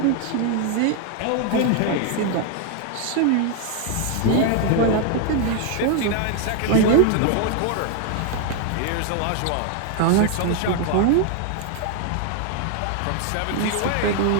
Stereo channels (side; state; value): both; different; correlation 0.00